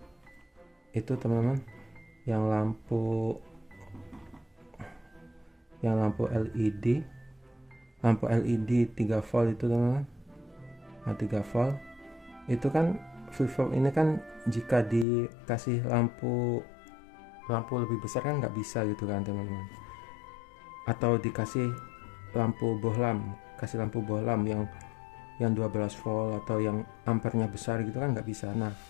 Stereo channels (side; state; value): right; drops out; at 15.1 s